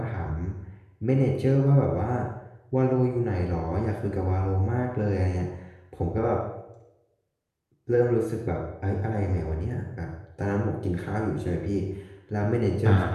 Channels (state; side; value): identical; both; correlation 1.00